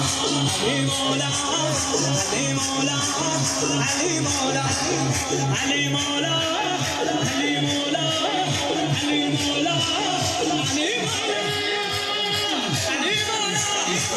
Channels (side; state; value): both; identical; correlation 1.00